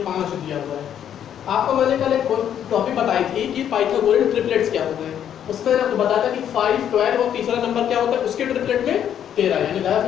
5 दिया हुआ है। आपको मैंने कल एक टॉपिक बताई थी कि पाइथागोरियन ट्रिपलेट्स क्या होते हैं, उसमें आपको बताया था कि 5, 12 और तीसरा नंबर क्या होता है, उसके ट्रिपलेट में 13, यानी ज़्यादा से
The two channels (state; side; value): quieter; right; 9.6 dB